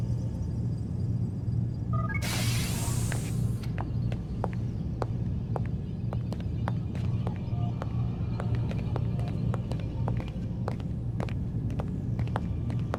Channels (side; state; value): both; identical; correlation 1.00